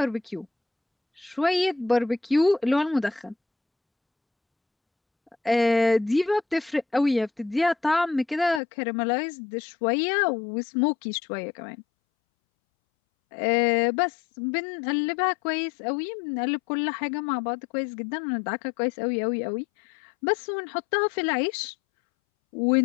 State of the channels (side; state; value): right; drops out; at 8.6 s